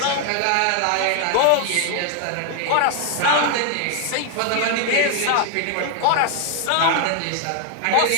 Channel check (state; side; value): different; both; correlation 0.00